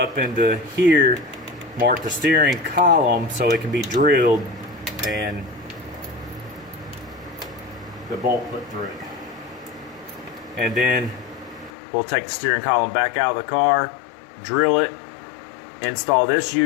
into here, mark the steering column so it can be drilled and the bolt put through it. And then we'll take the steering column back out of the car, drill it, install this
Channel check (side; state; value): right; drops out; at 11.7 s